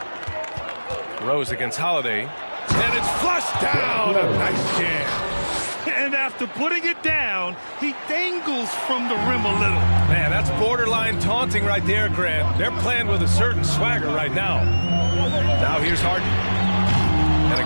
Rose against Holiday. And it's flushed down. A nice jam. And after putting it down, he dangles from the rim a little. Man, that's borderline taunting right there, Grant. They're playing with a certain swagger right now. Now here's Harden. And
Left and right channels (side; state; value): both; inverted; correlation -1.00